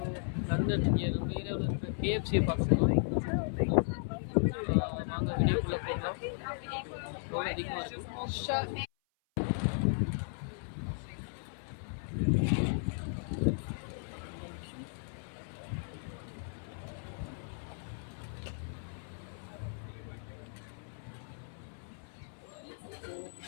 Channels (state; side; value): silent; right; 54 dB below the other